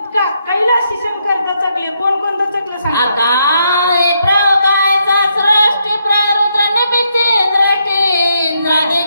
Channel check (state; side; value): inverted; both; correlation -0.77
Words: कैलासी शंकर दचकले. कोण दचकले सांगा.